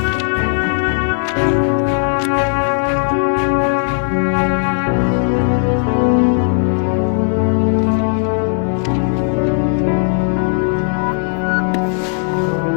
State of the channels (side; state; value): right; silent; 59 dB below the other